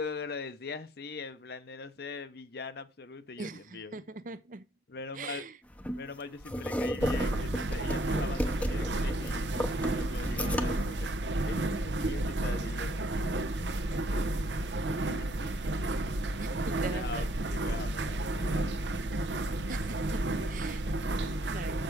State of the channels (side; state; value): both; normal; correlation 0.67